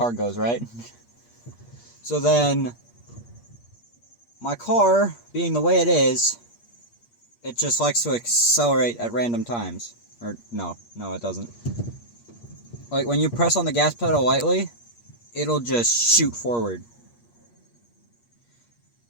goes, right? So then, my car, being the way it is, it just likes to accelerate at random times. Or, no, it doesn't. Like, when you press on the gas pedal lightly, it'll just shoot forward.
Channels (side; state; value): right; late; 8.5 ms